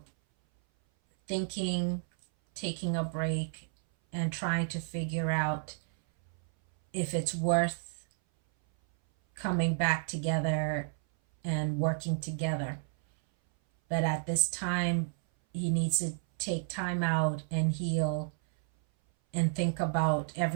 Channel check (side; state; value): left; silent; 57 dB below the other